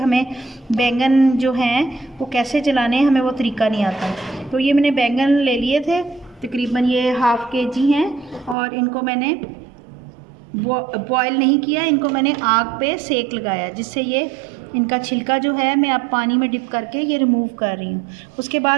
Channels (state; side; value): drops out; left; at 8.6 s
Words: बैंगन जो हैं वो कैसे जलाने हैं, हमें वो तरीका नहीं आता। तो ये मैंने बैंगन ले लिए थे, तकरीबन ये हाफ़ kg हैं और इनको मैंने बॉयल नहीं किया, इनको मैंने आग पे सेक लगाया, जिससे ये इनका छिलका जो है मैं अब पानी में डिप करके ये रिमूव कर रही हूँ। उसके